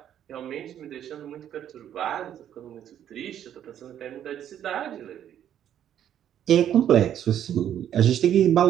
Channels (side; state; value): left; quieter; 10.3 dB